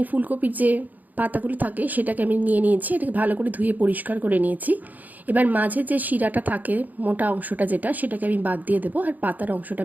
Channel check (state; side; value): late; left; 0.082 ms